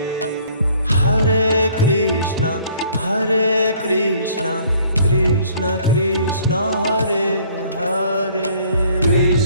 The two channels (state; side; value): inverted; both; correlation -0.58